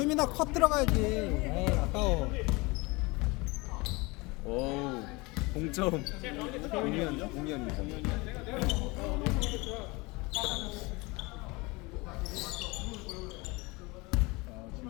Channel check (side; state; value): right; quieter; 24.9 dB